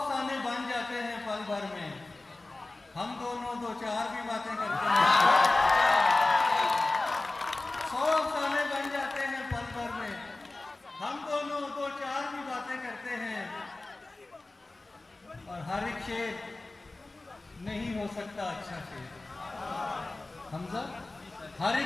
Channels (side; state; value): right; quieter; 3.1 dB